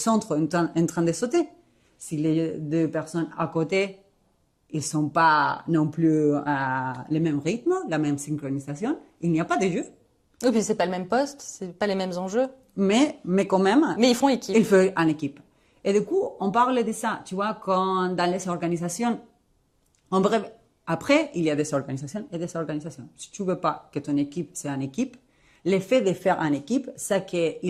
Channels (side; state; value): both; identical; correlation 1.00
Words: en train de sauter. Si les deux personnes à côté, ils sont pas non plus à le même rythme, la même synchronisation, il n'y a pas de jeu. Oui, puis c'est pas le même poste, c'est pas les mêmes enjeux. Mais quand même. Mais ils font équipe. Ils font en équipe. Et du coup, on parle de ça, tu vois, quand dans les organisations, en bref, après, il y a des organisations et des organisations. Si tu veux pas que ton équipe soit une équipe, l'effet de faire une équipe, c'est